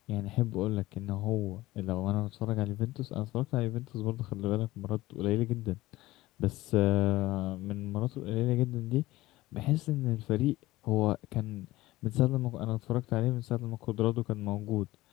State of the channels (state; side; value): quieter; right; 18.0 dB